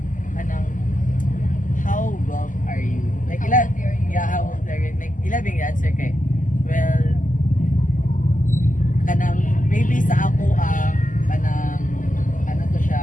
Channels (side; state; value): right; late; 0.38 ms